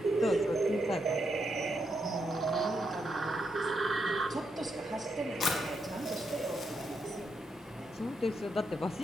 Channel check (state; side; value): normal; both; correlation 0.81